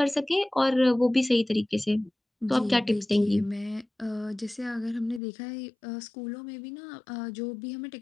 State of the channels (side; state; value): right; drops out; at 5.2 s